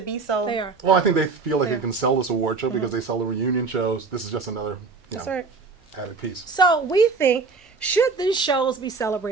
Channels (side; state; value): left; quieter; 4.4 dB